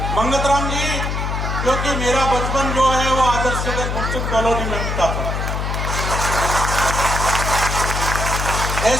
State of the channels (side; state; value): left; noise; hum, 2 dB below the sound